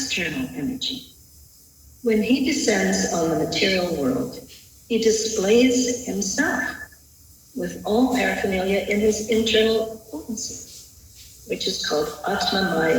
energy. When he descends on the material world, he displays himself with all paraphernalia in his internal potency, which is called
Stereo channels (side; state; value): both; identical; correlation 1.00